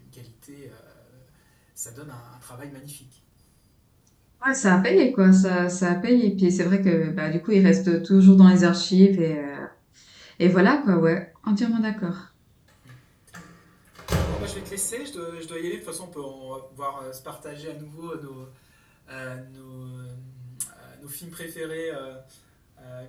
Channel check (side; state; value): both; identical; correlation 1.00